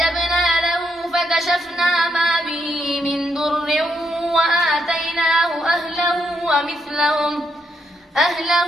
له فكشفنا ما به من ضر وآتيناه أهله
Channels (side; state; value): both; normal; correlation 0.78